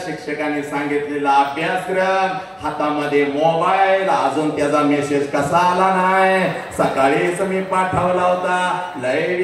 शिक्षकांनी सांगितलेला अभ्यासक्रम, हातामध्ये मोबाईल, अजून त्याचा मेसेज कसा आला नाही, सकाळीच मी पाठवला होता, लय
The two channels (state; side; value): identical; both; correlation 1.00